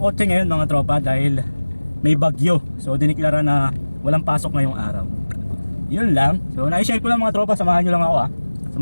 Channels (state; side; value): inverted; both; correlation -1.00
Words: ngayon mga tropa dahil may bagyo. So diniklara na walang pasok ngayong araw. Yun lang. So na-share ko lang mga tropa, samahan nyo lang ako